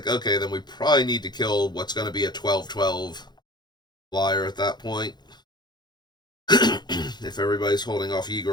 okay, then we probably need to kill what's going to be a 12/12 flyer at that point. If everybody's holding off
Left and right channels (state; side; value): late; right; 0.21 ms